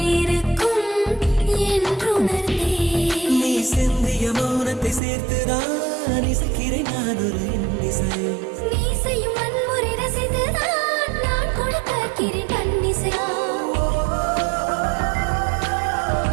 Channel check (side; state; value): left; drops out; at 5.0 s